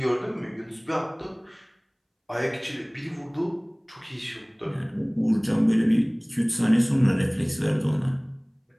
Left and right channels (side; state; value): both; identical; correlation 1.00